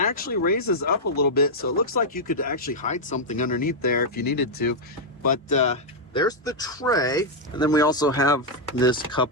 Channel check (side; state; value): both; normal; correlation -0.03